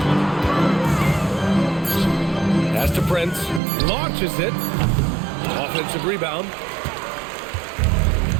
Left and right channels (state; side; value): drops out; left; at 3.6 s